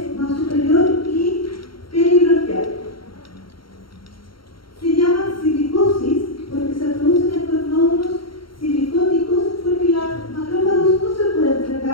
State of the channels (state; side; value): late; right; 0.73 ms